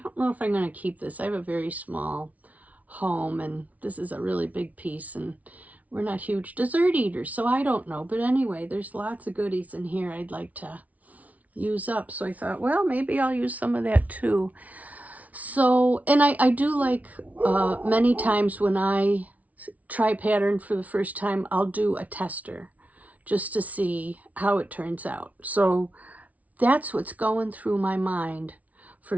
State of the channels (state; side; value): late; left; 0.070 ms